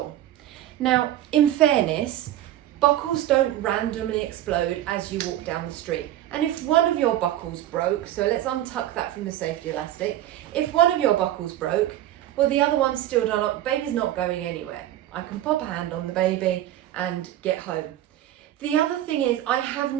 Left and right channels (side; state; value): left; quieter; 13.0 dB